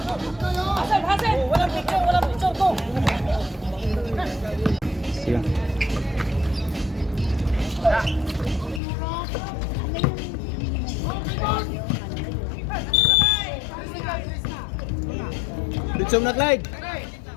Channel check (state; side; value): drops out; right; at 8.8 s